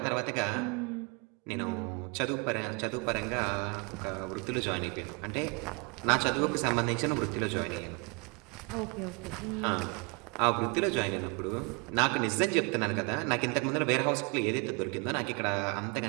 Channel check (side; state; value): left; quieter; 31.6 dB